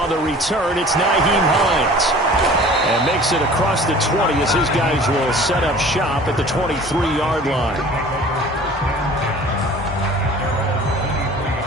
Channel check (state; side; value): normal; both; correlation 0.46